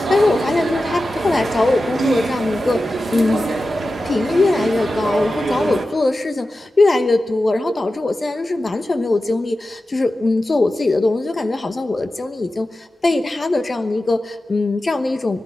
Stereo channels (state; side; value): normal; both; correlation 0.93